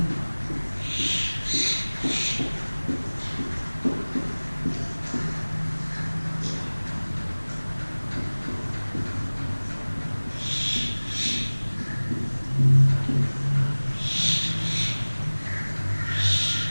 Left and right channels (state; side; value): inverted; both; correlation -1.00